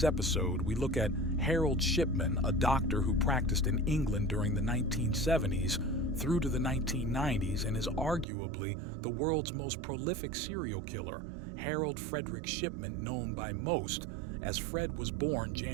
episode, we look at Harold Shipman, a doctor who practiced in England during the 1970s through to the 1990s and is arguably the world's most prolific serial killer. Harold Frederick Shipman, known by most as Fred, was born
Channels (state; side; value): drops out; left; at 8.2 s